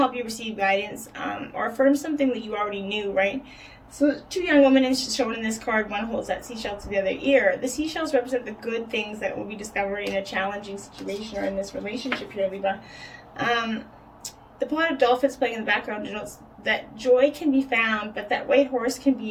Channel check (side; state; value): both; identical; correlation 1.00